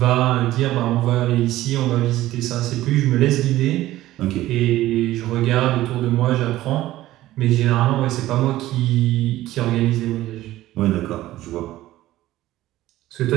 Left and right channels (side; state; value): left; quieter; 15.5 dB